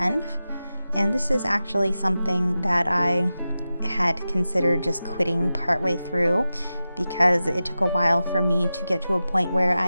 and this is actually something that I had considered just quitting partway through because it took a while for me to get to a point where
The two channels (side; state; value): both; inverted; correlation -0.93